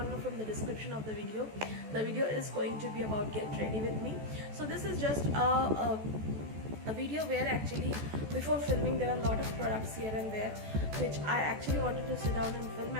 know from the description of the video is going to be about get ready with me. So this is just a video where actually before filming there are a lot of products here and there which I actually wanted to sit down and film,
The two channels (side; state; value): left; late; 14 ms